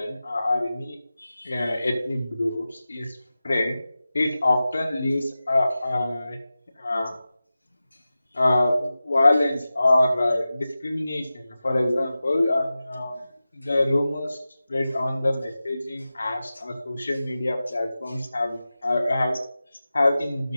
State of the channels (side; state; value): both; inverted; correlation -0.95